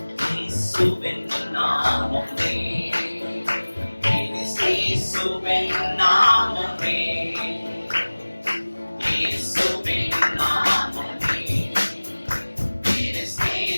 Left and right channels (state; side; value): inverted; both; correlation -1.00